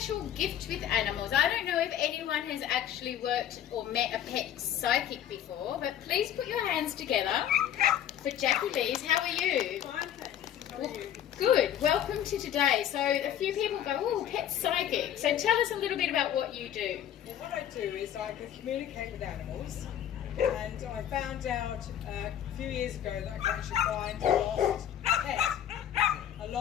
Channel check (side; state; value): right; quieter; 10.4 dB